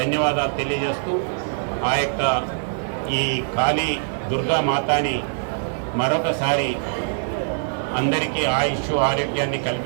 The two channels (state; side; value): silent; left; digital silence